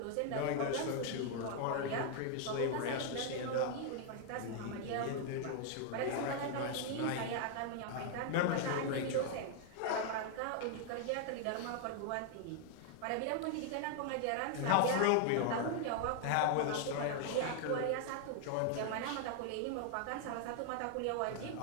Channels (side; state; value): both; different; correlation 0.00